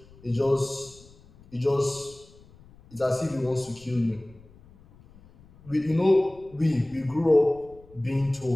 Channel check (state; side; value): noise; left; rumble, 25 dB below the sound